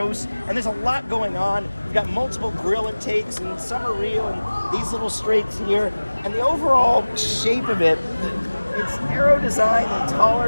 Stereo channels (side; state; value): both; inverted; correlation -1.00